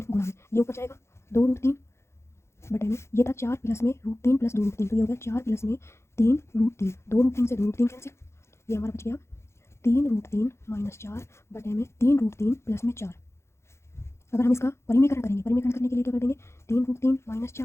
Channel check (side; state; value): right; late; 0.13 ms